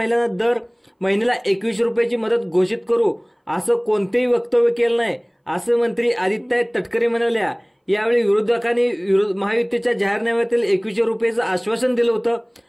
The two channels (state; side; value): identical; both; correlation 1.00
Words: दर महिन्याला 2100 रुपयाची मदत घोषित करू असं कोणतेही वक्तव्य केलं नाही, असं मंत्री आदित्य तटकरे म्हणाले। यावेळी विरोधकांनी महायुतीच्या जाहीरनाम्यातील 2100 रुपयाचं आश्वासन दिलं होतं